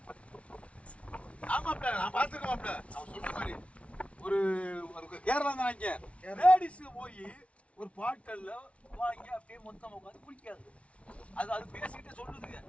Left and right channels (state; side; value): late; right; 0.063 ms